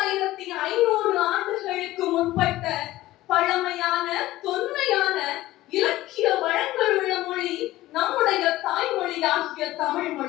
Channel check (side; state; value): right; quieter; 16.4 dB